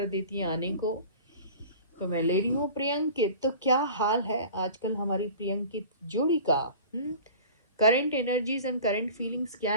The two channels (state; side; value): inverted; both; correlation -0.41